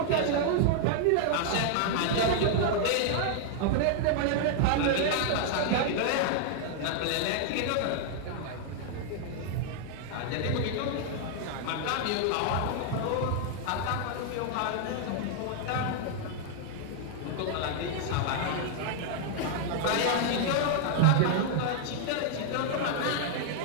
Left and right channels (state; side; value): different; both; correlation 0.00